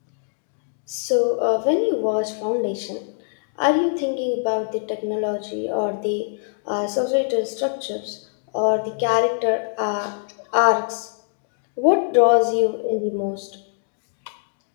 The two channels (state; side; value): silent; right; digital silence